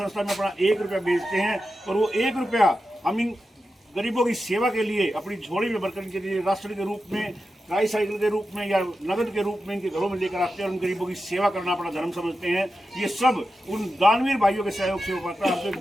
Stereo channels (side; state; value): both; normal; correlation 0.91